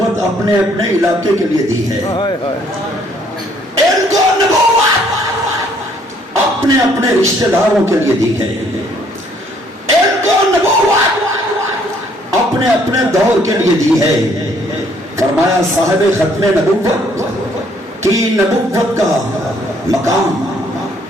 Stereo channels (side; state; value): both; normal; correlation 0.64